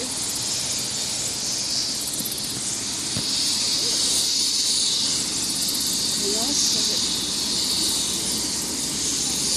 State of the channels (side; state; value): both; identical; correlation 1.00